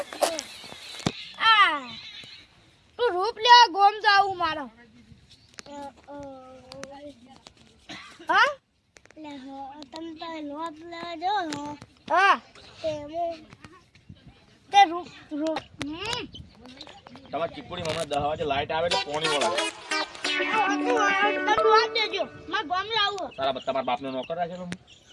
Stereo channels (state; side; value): identical; both; correlation 1.00